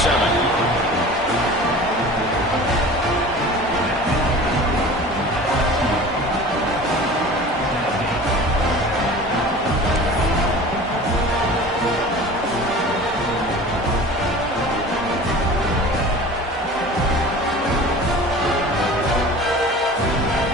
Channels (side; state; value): both; normal; correlation 0.40